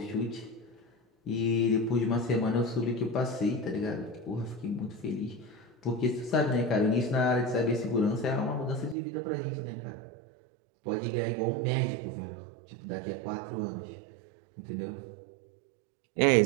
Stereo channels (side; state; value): left; drops out; at 9.0 s